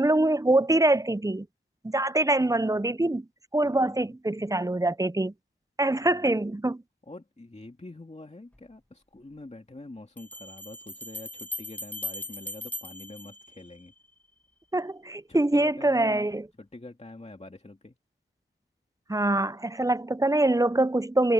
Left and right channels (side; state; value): both; normal; correlation 0.73